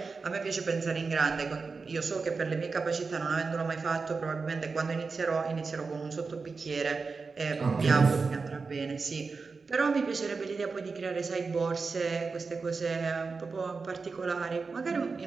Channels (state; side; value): quieter; left; 4.5 dB